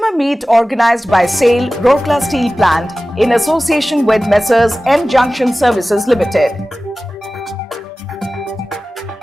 meet organized by SAIL Rourkela Steel Plant in association with Messrs M Junction Services Limited.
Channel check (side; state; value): both; normal; correlation 0.96